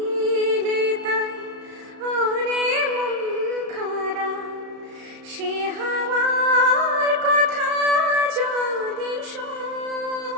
তাই ওরে মন খারাপ সে হাওয়ার কথা যদি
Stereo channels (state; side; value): late; left; 35 ms